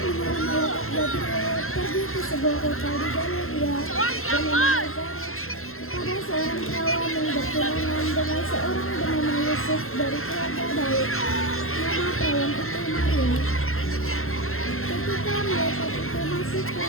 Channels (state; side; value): late; right; 0.62 ms